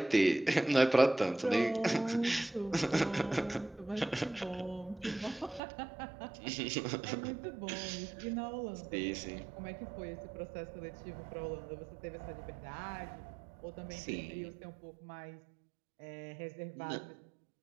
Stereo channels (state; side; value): drops out; left; at 5.6 s